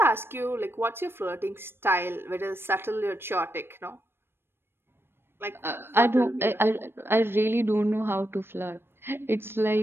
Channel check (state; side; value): late; left; 0.11 ms